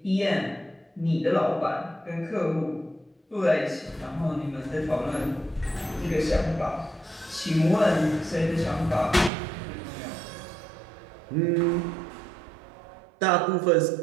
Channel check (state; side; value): drops out; left; at 9.3 s